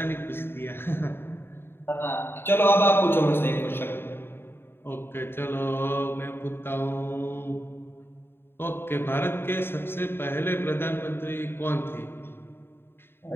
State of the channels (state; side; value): late; right; 0.11 ms